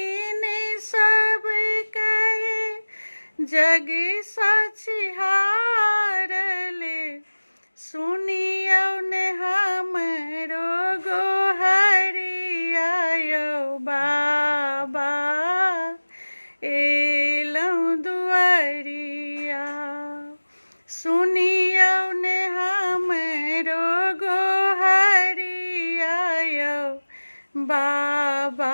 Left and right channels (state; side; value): inverted; both; correlation -1.00